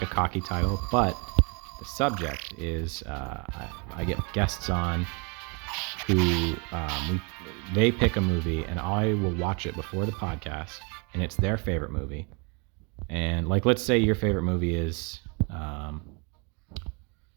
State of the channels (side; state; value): left; quieter; 32.5 dB